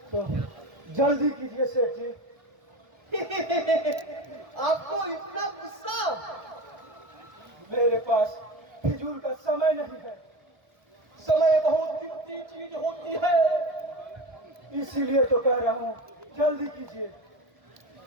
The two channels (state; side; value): late; left; 1.3 ms